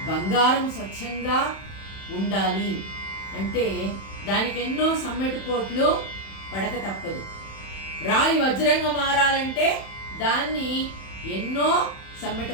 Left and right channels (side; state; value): right; late; 31 ms